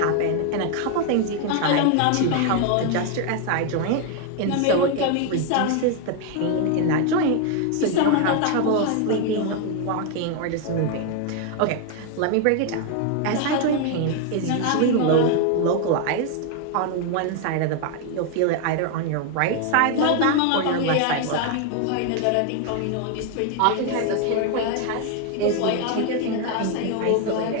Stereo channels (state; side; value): different; both; correlation 0.01